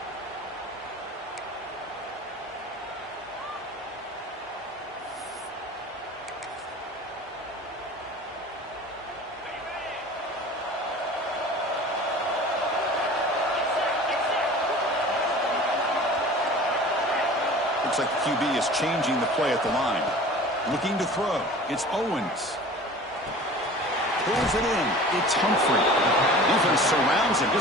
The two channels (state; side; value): normal; both; correlation 0.41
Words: Looks like the QB is changing the play at the line. Looking to throw. It's Owens. Pulls it in. It's Humphrey. Defense surrounds him.